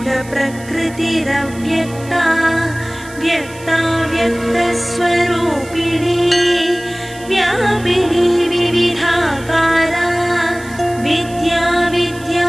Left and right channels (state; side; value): noise; right; hiss, 20 dB below the sound